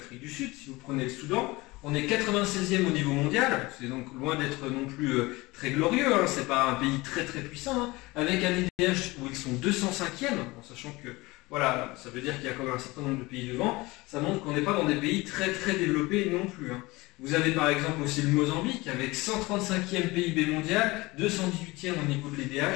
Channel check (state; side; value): quieter; right; 21.8 dB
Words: du Sud, si vous prenez le Soudan, on est 96e au niveau mondial, c'est donc loin d'être non plus très glorieux, c'est pas un pays très très puissant, avec un IDH où ils sont 205e, en sachant que voilà, ça veut dire qu'il y a quand même un certain nombre de pays devant, ça montre qu'on n'est pas dans des pays très très développés non plus. Vous avez par exemple aussi le Mozambique avec 135e PIB mondial, 218e au niveau de